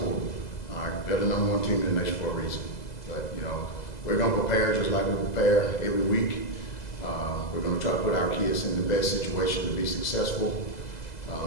All right, they're the number one team in the nation for a reason. But we're going to prepare just like we prepare every week. We're going to try to put our kids in the best situation to be successful.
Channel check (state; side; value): late; right; 2.0 ms